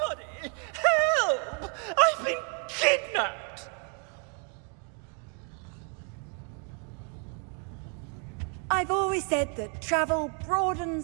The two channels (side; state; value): left; quieter; 38.7 dB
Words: Help! I've been kidnapped! I've always said that travel